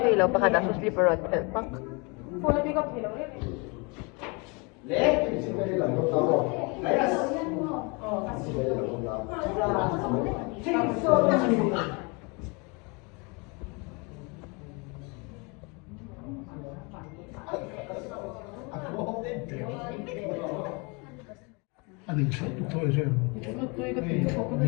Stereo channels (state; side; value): quieter; right; 30.3 dB